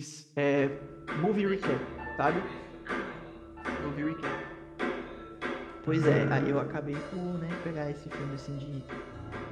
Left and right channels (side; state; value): both; identical; correlation 1.00